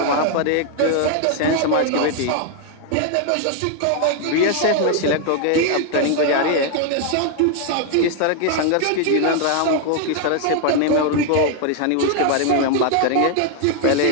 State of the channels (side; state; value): both; different; correlation 0.00